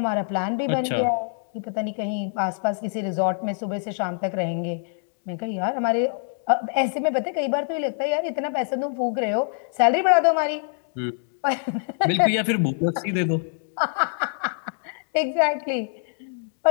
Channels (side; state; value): right; silent; digital silence